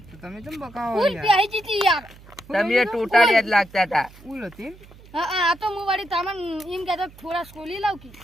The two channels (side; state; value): right; noise; hum, 22 dB below the sound